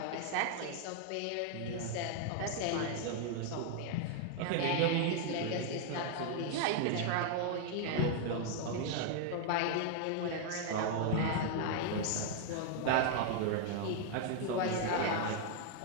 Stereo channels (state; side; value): different; both; correlation 0.00